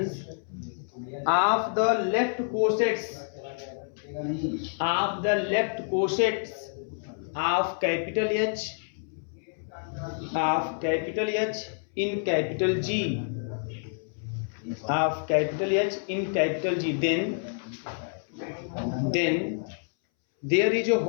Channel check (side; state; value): right; silent; 59 dB below the other